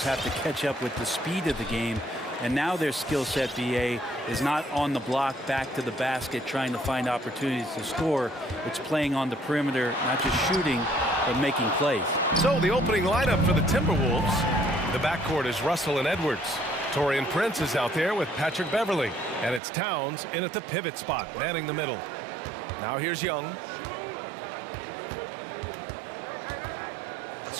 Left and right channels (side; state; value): left; drops out; at 19.6 s